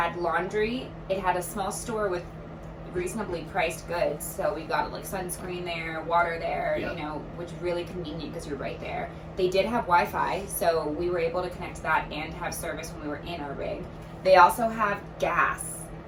laundry. It had a small store with reasonably priced goods. So we got like sunscreen there, water there, which is really convenient because you're right there. They did have Wi-Fi, so we were able to connect to that and have service when we were in our rig. They also have gas,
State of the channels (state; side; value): identical; both; correlation 1.00